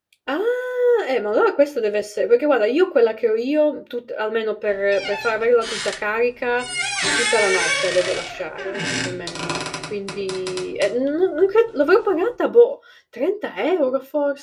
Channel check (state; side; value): identical; both; correlation 1.00